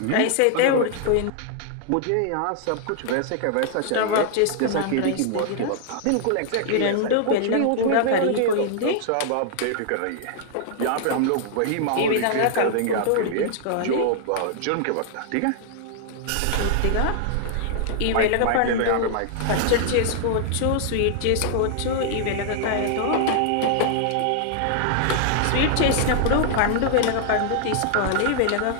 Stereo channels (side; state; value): both; different; correlation 0.00